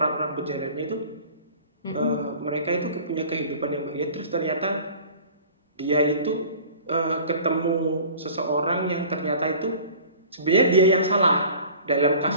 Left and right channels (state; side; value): inverted; both; correlation -0.45